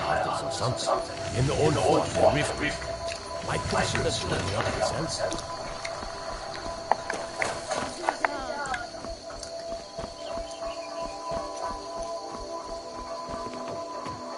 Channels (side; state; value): both; identical; correlation 1.00